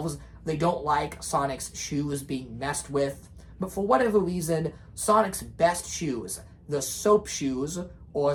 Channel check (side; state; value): both; identical; correlation 1.00